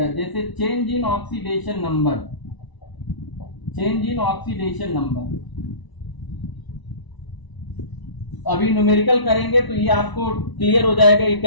जैसे change in oxidation number, change in oxidation number. अभी न्यूमेरिकल करेंगे तो ये आपको क्लियर हो जाएगा कि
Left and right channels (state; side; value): late; right; 1.0 ms